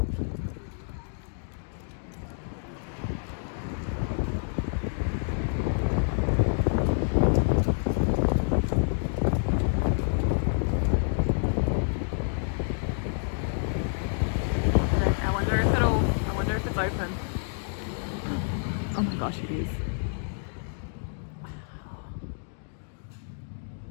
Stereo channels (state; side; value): silent; right; digital silence